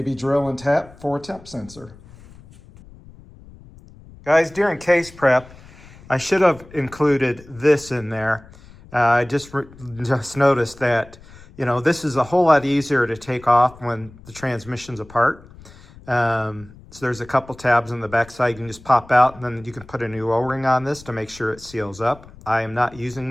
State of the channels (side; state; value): left; noise; rumble, 21 dB below the sound